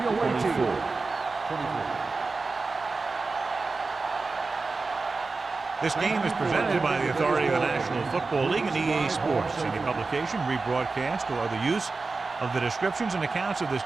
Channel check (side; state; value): left; quieter; 4.0 dB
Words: 24. This game is presented by the authority of the National Football League and EA Sports. Any publication, rebroadcast, or other use of the descriptions and accounts of this